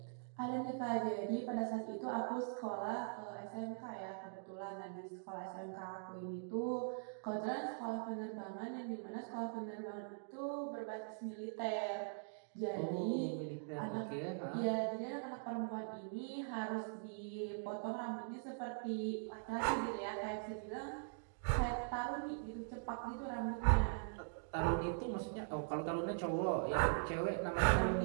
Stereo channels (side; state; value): left; silent; digital silence